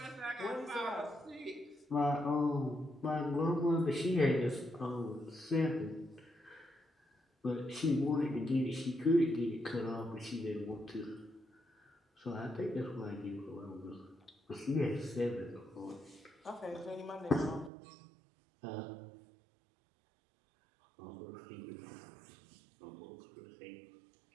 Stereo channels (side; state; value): left; drops out; at 17.7 s